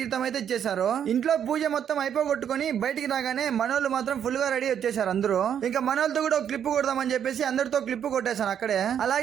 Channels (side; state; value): left; quieter; 8.9 dB